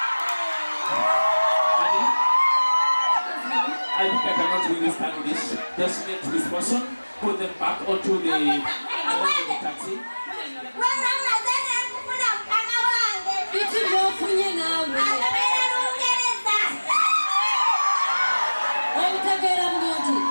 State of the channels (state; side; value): inverted; both; correlation -1.00